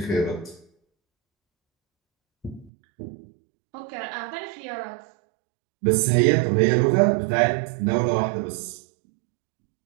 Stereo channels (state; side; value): drops out; left; at 2.7 s